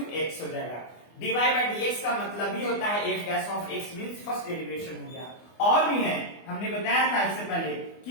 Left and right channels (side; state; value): right; late; 24 ms